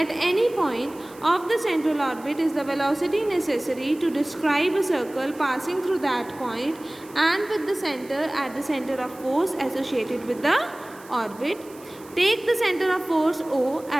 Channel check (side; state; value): right; noise; hiss, 23 dB below the sound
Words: at any point of the central orbit is the velocity necessary to describe a circle passing through that point and with the centre at the centre of force associated with the orbit. Take the center of force O